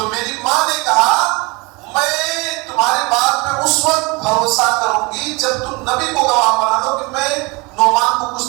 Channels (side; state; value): left; quieter; 26.4 dB